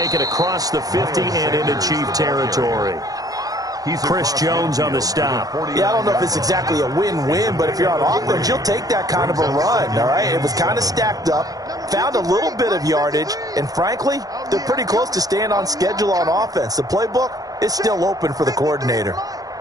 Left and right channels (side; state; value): left; late; 0.18 ms